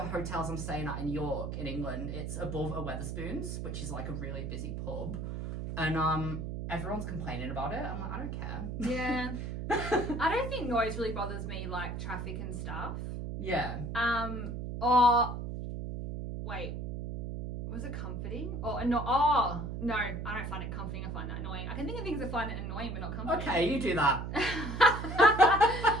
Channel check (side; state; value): right; noise; hum, 5 dB below the sound